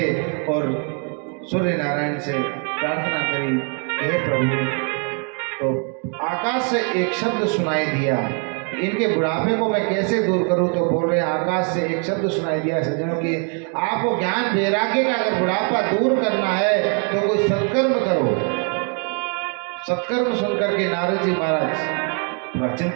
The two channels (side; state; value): left; quieter; 38.9 dB